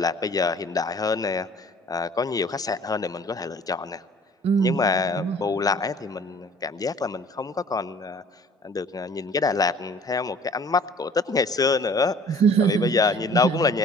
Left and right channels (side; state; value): both; normal; correlation 0.51